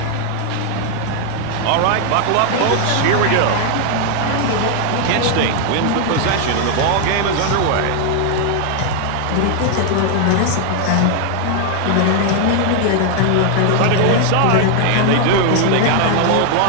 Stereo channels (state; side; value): different; both; correlation 0.00